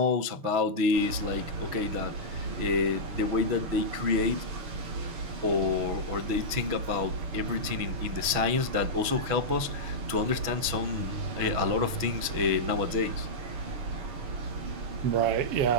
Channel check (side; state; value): left; late; 6.2 ms